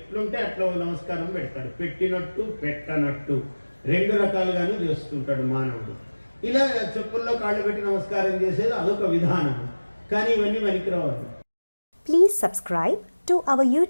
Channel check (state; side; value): inverted; both; correlation -1.00